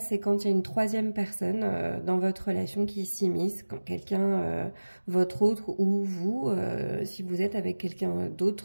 quand il y a une troisième personne dans votre relation qui s'immisce, quand quelqu'un, votre autre ou vous, si vous êtes avec quelqu'un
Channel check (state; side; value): inverted; both; correlation -1.00